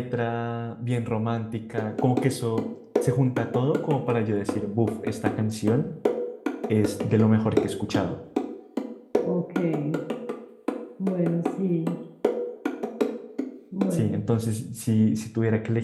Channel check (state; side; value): identical; both; correlation 1.00